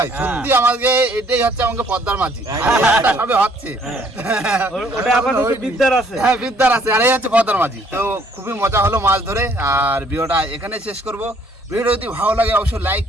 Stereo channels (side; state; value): both; normal; correlation 0.62